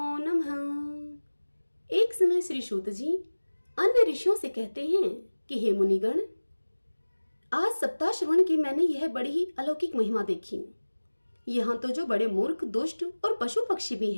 नमः। एक समय श्री सूत जी अन्य ऋषियों से कहते हैं कि हे मुनिगण, आज सप्ताह श्रवण की मैंने यह बड़ी ही अलौकिक महिमा देखी। यहाँ तो जो बड़े मूर्ख, दुष्ट और पशु पक्षी भी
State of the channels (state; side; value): inverted; both; correlation -1.00